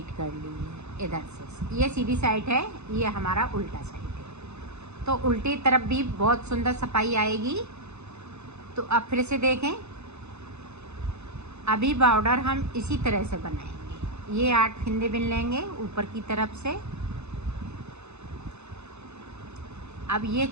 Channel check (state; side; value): late; left; 0.81 ms